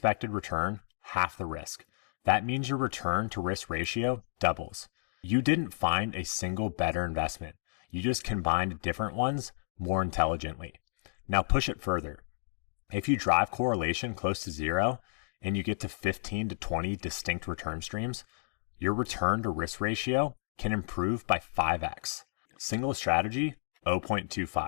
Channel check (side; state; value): right; silent; digital silence